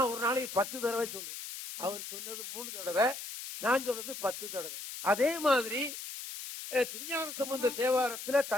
ஒரு நாளைக்கு 10 தடவை சொல்றேன். அவர் சொன்னது 3 தடவை, நான் சொல்றது 10 தடவை. அதே மாதிரி திருஞான சம்பந்த தேவாரத்துல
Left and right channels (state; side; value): noise; left; hiss, 9 dB below the sound